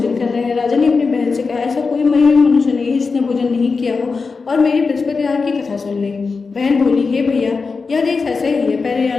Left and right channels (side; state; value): right; quieter; 4.6 dB